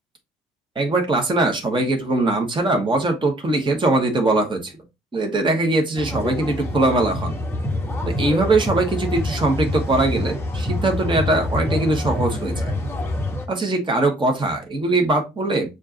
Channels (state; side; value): normal; both; correlation 0.61